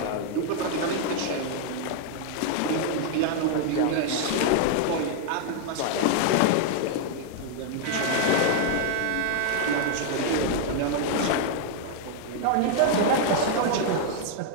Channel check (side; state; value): both; different; correlation 0.00